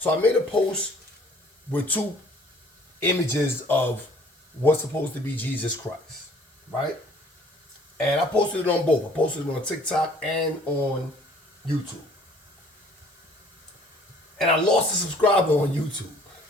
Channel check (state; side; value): normal; both; correlation 0.55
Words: I made a post with two images of what's supposed to be Jesus Christ, right? And I posted it on both. I posted it on TikTok and on YouTube. And I lost a subscriber on YouTube.